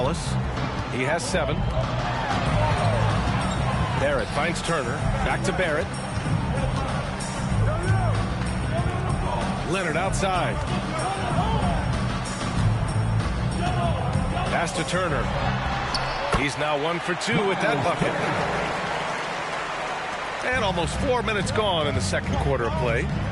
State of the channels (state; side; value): identical; both; correlation 1.00